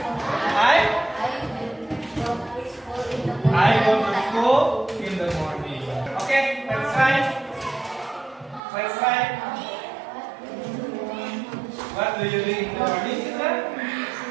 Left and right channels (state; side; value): drops out; left; at 8.6 s